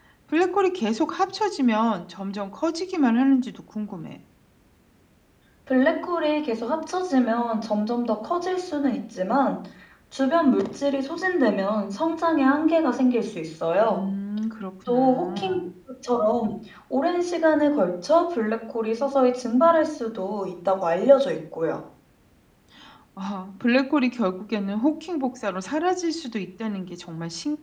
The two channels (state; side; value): identical; both; correlation 1.00